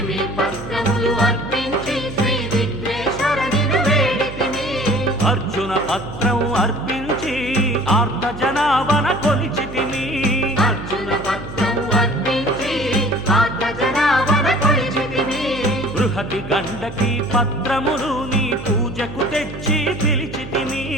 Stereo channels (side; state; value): right; noise; hum, 11 dB below the sound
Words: పత్రములు అర్పించి శ్రీ విఘ్నేశ్వరనిను వేడితిని అర్జున పత్రం అర్పించి ఆర్త జనావన కొలిచితిని అర్జున పత్రం అర్పించి ఆర్త జనావన కొలిచితిని బృహతి గండకి పత్రములు నీ పూజకు తెచ్చి పిలిచితిని